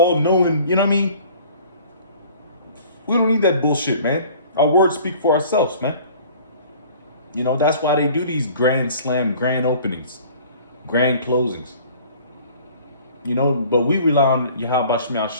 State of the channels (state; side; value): inverted; both; correlation -0.49